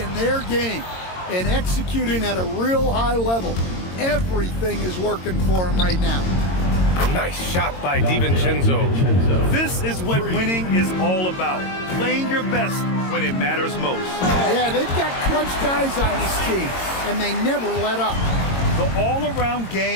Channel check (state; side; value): late; right; 22 ms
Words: their game and executing at a real high level. Everything is working for them right now. Nice shot by DiVincenzo. This is what winning is all about. Playing your best when it matters most. Yeah, they've got clutch guys on this team, and they never let up. The all-around